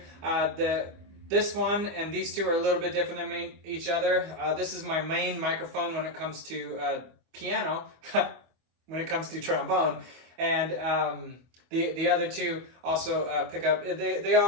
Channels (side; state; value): left; late; 25 ms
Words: This one and these two are a little bit different than each other. This is my main microphone when it comes to piano, when it comes to trombone, and the other two also pick up. They